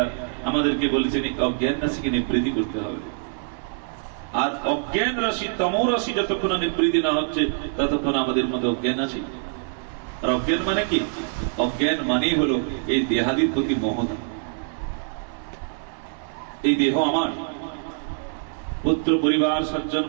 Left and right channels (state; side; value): silent; left; 62 dB below the other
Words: আমাদেরকে বলেছেন, অজ্ঞান রাশিকে নিবৃত্তি করতে হবে। আর অজ্ঞান রাশি, তম রাশি যতক্ষণ নিবৃত্তি না হচ্ছে, ততক্ষণ আমাদের মধ্যে অজ্ঞান আছে। আর অজ্ঞান মানে কি? অজ্ঞান মানেই হলো এই দেহাদির প্রতি মোহতা। এই দেহ আমার, পুত্র পরিবার সজ্জন